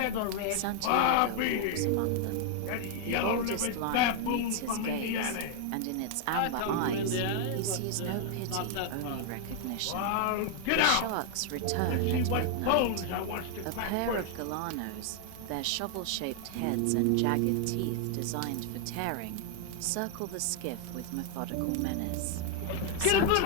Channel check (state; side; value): different; both; correlation 0.00